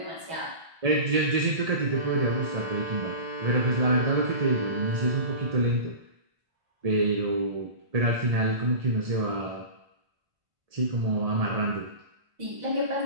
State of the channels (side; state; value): left; late; 1.7 ms